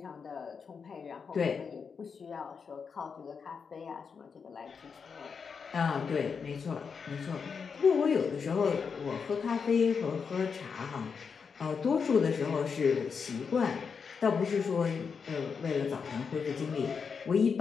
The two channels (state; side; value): quieter; right; 5.9 dB